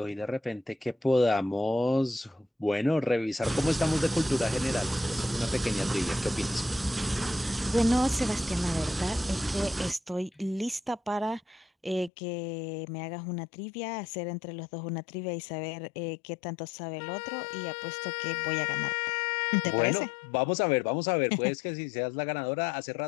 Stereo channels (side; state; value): right; drops out; at 12.1 s